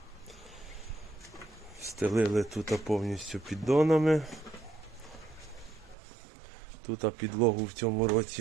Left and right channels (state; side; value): drops out; left; at 6.0 s